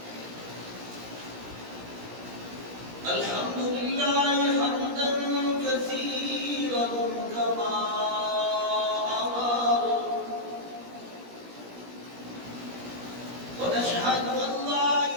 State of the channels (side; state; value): left; late; 17 ms